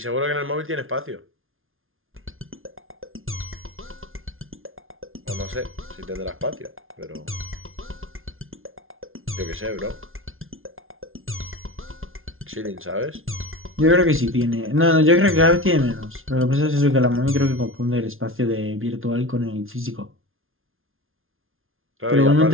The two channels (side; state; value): left; late; 0.60 ms